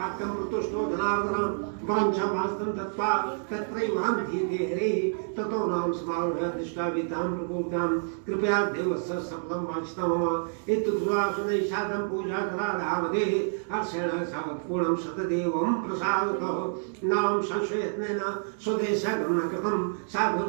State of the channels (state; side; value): silent; left; digital silence